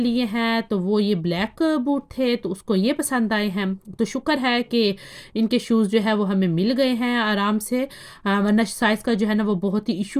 हैं, तो वो ये ब्लैक बूट थे, तो उसको ये पसंद आए हैं। तो शुक्र है कि इनके शूज़ जो है वो हमें मिल गए हैं आराम से, वरना साइज़ का जो है ना वो बहुत ही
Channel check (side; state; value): both; identical; correlation 1.00